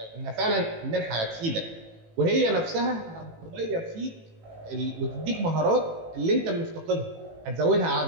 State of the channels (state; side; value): late; left; 18 ms